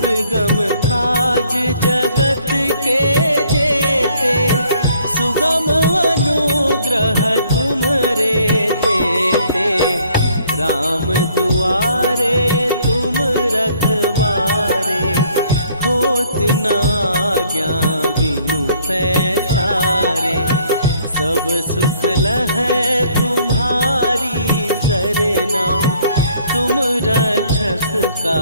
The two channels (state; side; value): inverted; both; correlation -0.62